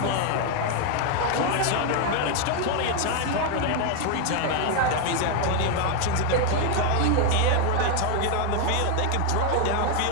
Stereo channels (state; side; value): different; both; correlation 0.01